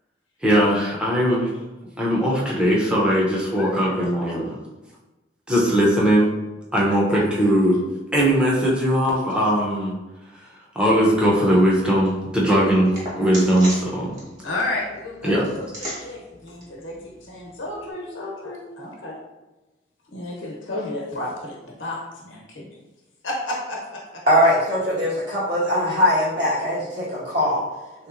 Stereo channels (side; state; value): both; normal; correlation 0.48